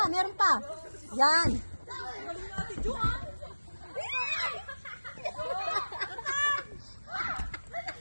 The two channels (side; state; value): both; inverted; correlation -1.00